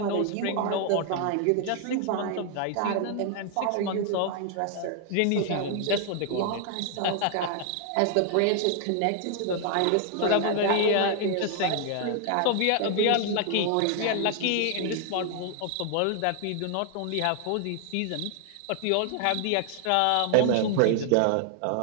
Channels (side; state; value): both; different; correlation 0.00